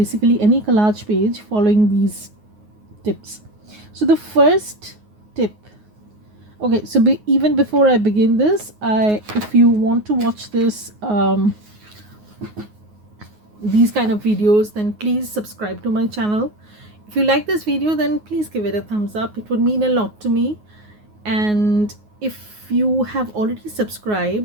any collage page following these tips. So the first tip, okay, so even before I begin this, if you want to watch this these kind of videos, then please subscribe to my channel. If you like this video, then please give it a thumbs up. It would mean a lot to me. And if you have already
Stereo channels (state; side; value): late; left; 9.5 ms